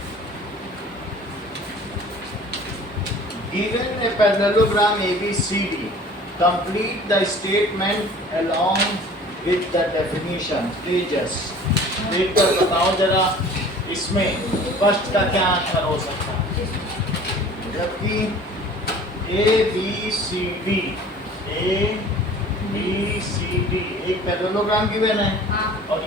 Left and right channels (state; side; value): normal; both; correlation 0.46